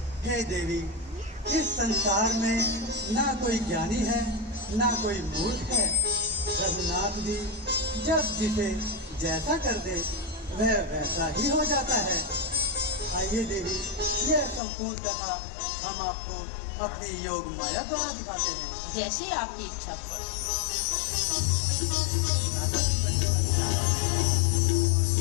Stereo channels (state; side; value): drops out; right; at 14.6 s